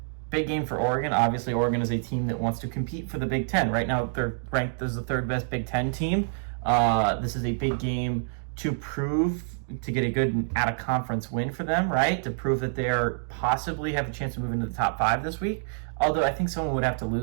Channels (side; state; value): left; silent; digital silence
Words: Big game for Oregon. Obviously, Oregon is a team that wants to compete for the Big Ten. Right now, they're ranked as the 3rd best Big Ten team. This is a big game to get a good out-of-conference win for them, right? To prove that they are possibly have a chance to move into the top 5 this week. Although I think someone would have to